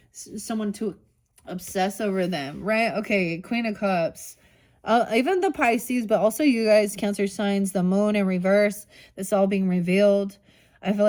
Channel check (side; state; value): both; identical; correlation 1.00